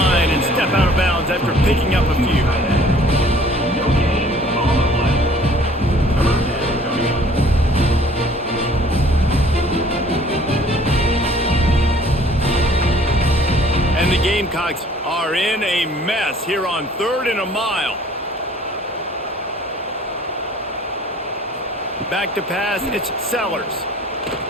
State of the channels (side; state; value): both; normal; correlation 0.54